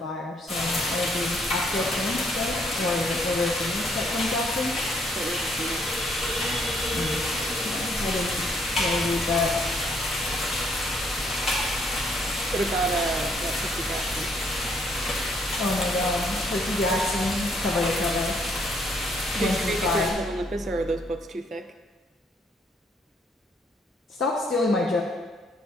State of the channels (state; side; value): normal; both; correlation 0.68